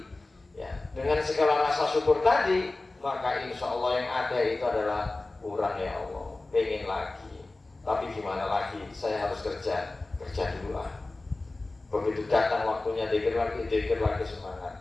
ya, dengan segala rasa syukur tadi, maka insya Allah yang ada itu adalah kurang ya Allah, pengen lagi, tapi gimana lagi, saya harus kerja dulu lah. Begitu datang waktunya zikir lagi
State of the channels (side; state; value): right; quieter; 3.1 dB